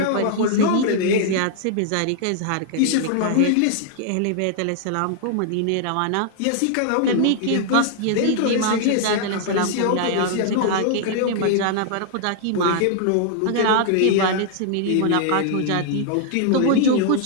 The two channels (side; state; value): both; different; correlation -0.01